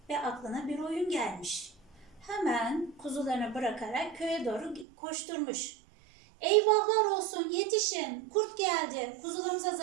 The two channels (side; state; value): left; drops out; at 4.9 s